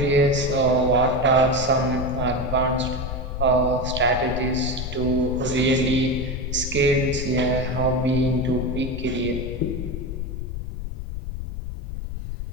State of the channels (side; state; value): left; noise; rumble, 6 dB below the sound